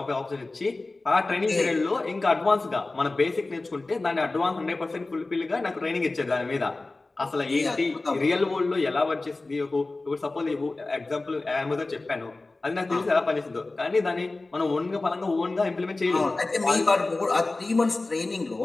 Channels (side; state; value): right; quieter; 3.2 dB